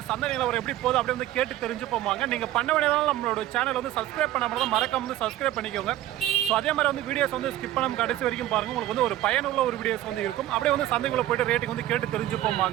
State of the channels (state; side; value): quieter; left; 14.1 dB